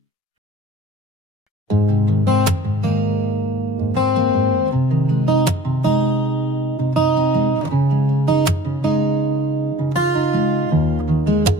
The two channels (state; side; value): normal; both; correlation 0.48